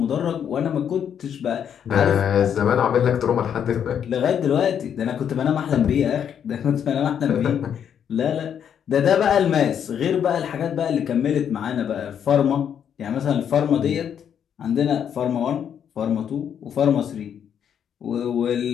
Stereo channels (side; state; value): right; quieter; 8.5 dB